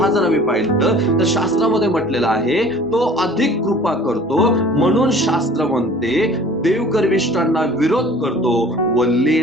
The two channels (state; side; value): normal; both; correlation 0.47